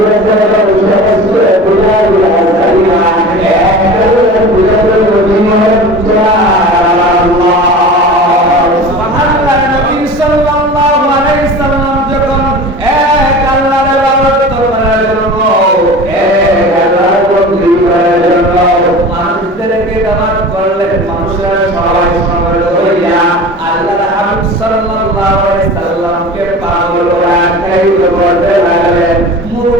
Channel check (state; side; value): normal; both; correlation 0.36